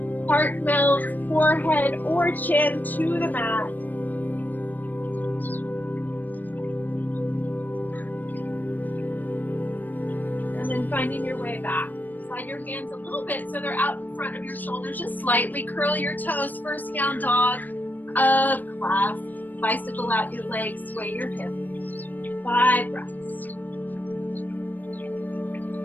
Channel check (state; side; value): late; right; 0.087 ms